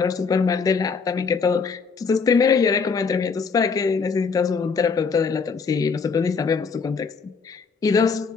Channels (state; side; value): quieter; right; 5.3 dB